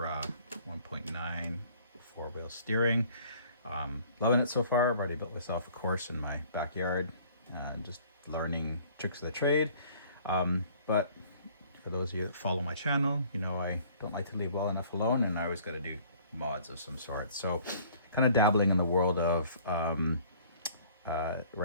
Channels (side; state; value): both; inverted; correlation -0.54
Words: 1.9 four-wheel steering. Loving it so far. I've already built myself a course in my backyard, just learning tricks of the trade. But for those of you that follow my channel, you know I don't like to leave well enough alone, and I always got to do mods of some sort. So kind of dabbling in the world of